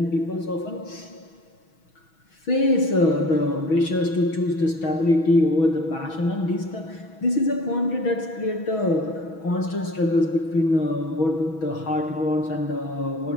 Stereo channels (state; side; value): late; right; 6.2 ms